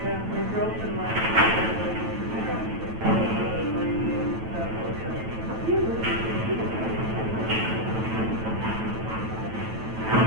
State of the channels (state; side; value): late; left; 9.1 ms